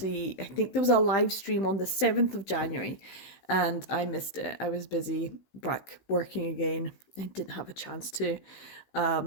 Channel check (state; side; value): late; right; 16 ms